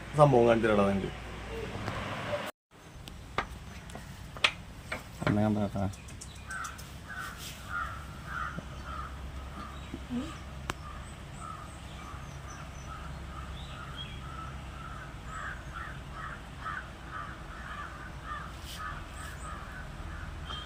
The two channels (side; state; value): both; identical; correlation 1.00